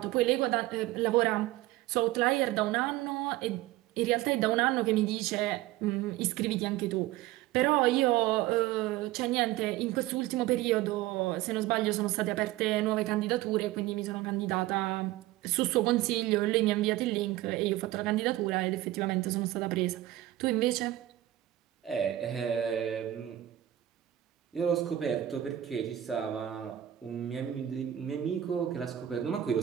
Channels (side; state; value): left; quieter; 14.4 dB